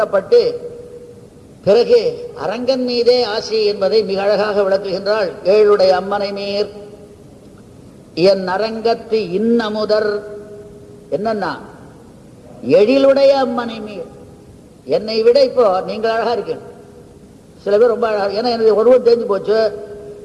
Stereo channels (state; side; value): identical; both; correlation 1.00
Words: பிறகு அரங்கன் மீதே ஆசி என்பதை மிக அழகாக விளக்குகின்றாள். ஏழுடைய அம்மனை மீர் என் அரங்கத்து இன்னமுதர் என்னன்னா எழிலுடைய அம்மனை மீர். என்னை விட இப்போ நீங்கள் அழகா இருக்கு, சில பேர் ரொம்ப அழகா, ஏன்னா எனக்கு ஒருவர் தெரிஞ்சு போச்சு.